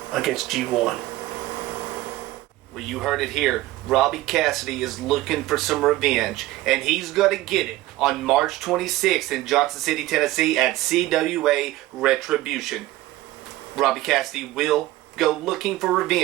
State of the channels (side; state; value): left; quieter; 16.9 dB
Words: against G1. Well, you heard it here. Robbie Cassidy is looking for some revenge, and he's going to get it on March 26th in Johnson City, Tennessee at CWA Retribution. Robbie Cassidy will go looking for